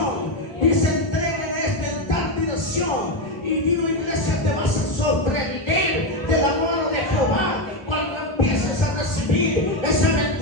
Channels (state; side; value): late; right; 1.0 ms